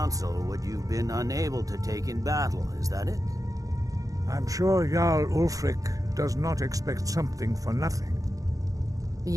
what you've been unable to take in battle, is that it? I'm sure Jarl Ulfric does not expect something for nothing.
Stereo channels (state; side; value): late; left; 0.17 ms